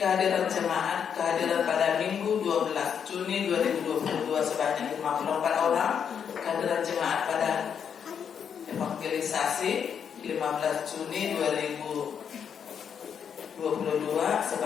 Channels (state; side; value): quieter; right; 7.6 dB